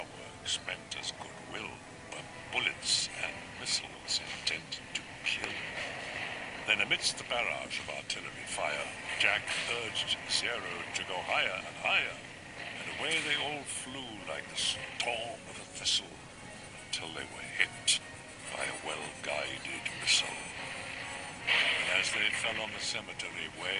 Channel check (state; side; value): identical; both; correlation 1.00